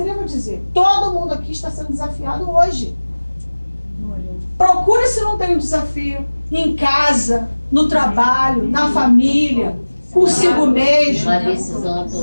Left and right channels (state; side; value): inverted; both; correlation -1.00